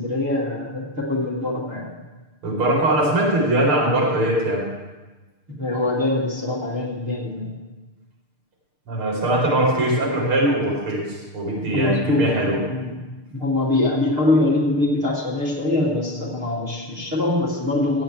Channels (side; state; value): left; late; 6.7 ms